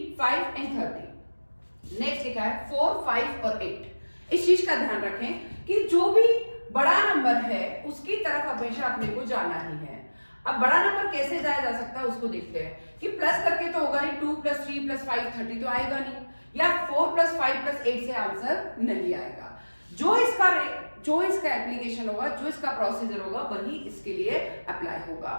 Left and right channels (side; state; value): both; inverted; correlation -1.00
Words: 5 एंड 30। नेक्स्ट लिखा है 4, 5 और 8। इस चीज का ध्यान रखें कि जो भी बड़ा नंबर है उसकी तरफ हमेशा अपने को जाना ही है। अब बड़ा नंबर कैसे जाया जा सकता है उसको देखते हैं कि प्लस करके तो होगा नहीं, 2 + 3 + 5 30 तो आएगा नहीं, या 4 + 5 + 8 से आंसर नहीं आएगा। जो इसका एप्लीकेशन होगा, जो इसका प्रोसीजर होगा वही इसके लिए अप्लाई होगा।